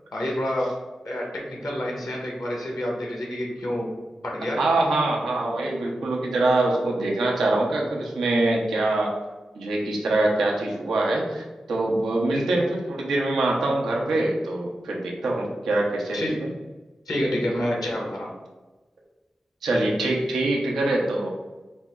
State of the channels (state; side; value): normal; both; correlation 0.89